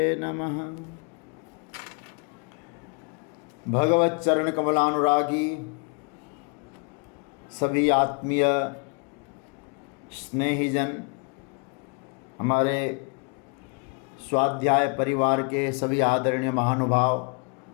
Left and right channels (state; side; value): quieter; right; 34.8 dB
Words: नमः। भगवत चरण कमलानुरागी सभी आत्मीय स्नेहीजन, हमारे स्वाध्याय परिवार के सभी आदरणीय महानुभाव,